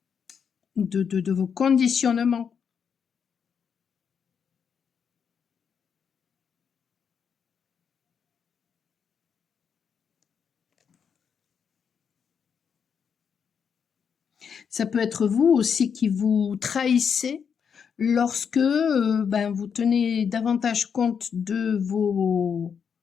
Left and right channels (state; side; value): quieter; right; 6.9 dB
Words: de vos conditionnements. Ça peut être vous aussi qui vous trahissez lorsque ben, vous tenez davantage compte de